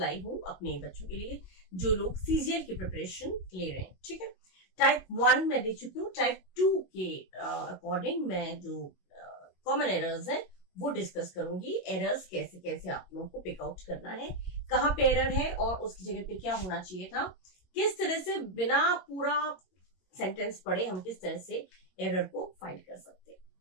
हूं अपने बच्चों के लिए जो लोग सीजीएल की प्रिपरेशन ले रहे हैं। ठीक है, टाइप 1 में दे चुकी हूँ। टाइप 2 के अकॉर्डिंग मैं जो कॉमन एरर्स है वो डिस्कस करूंगी। एरर्स कैसे कैसे आप लोगों को पिक आउट करना है, कहाँ पे एरर है और उसकी जगह पे क्या होना चाहिए था, किस तरह से बिना पूरा सेंटेंस पढ़े हम किस तरह से एरर को फाइंड कर सकते हैं।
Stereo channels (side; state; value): right; late; 22 ms